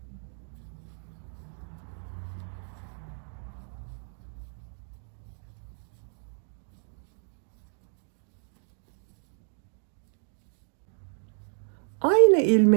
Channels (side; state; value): left; silent; digital silence